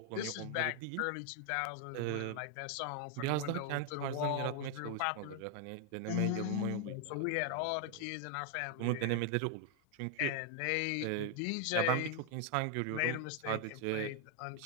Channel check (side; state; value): both; different; correlation 0.00